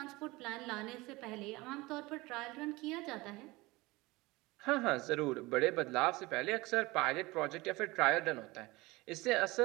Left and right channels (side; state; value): left; quieter; 21.8 dB